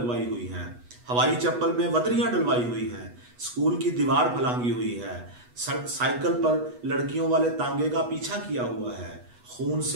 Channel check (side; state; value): left; late; 8.2 ms